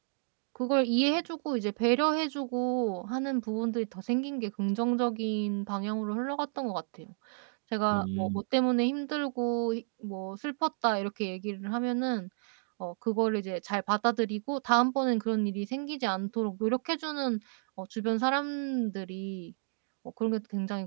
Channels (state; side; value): silent; left; digital silence